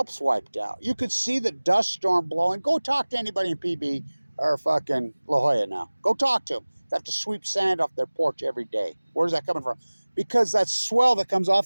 wiped out. You could see the dust storm blowing. Go talk to anybody in PB or fucking La Jolla now. Go talk to them. They have to sweep sand off their porch every day. Where's that coming from? Because that swell that comes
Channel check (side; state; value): both; inverted; correlation -1.00